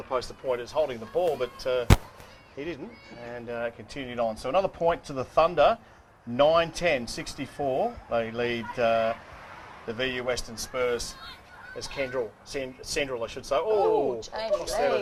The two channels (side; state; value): both; identical; correlation 1.00